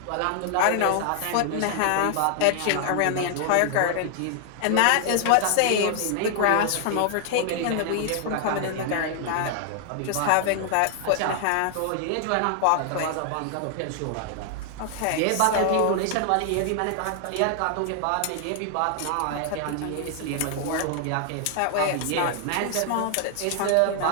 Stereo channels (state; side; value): different; both; correlation 0.00